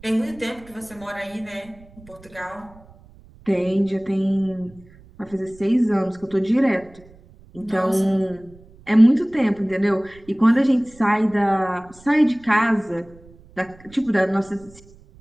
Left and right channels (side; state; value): right; noise; rumble, 24 dB below the sound